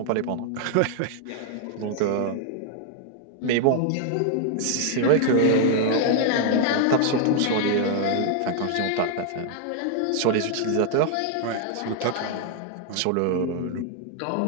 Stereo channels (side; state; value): both; different; correlation -0.01